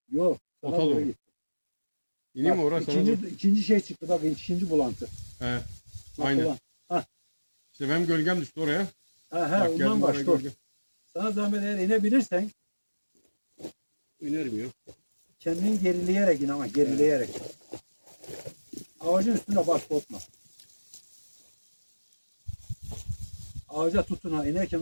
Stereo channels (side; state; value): both; inverted; correlation -1.00